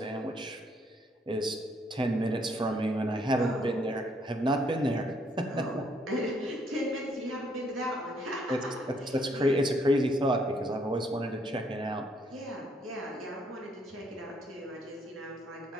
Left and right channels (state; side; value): normal; both; correlation 0.69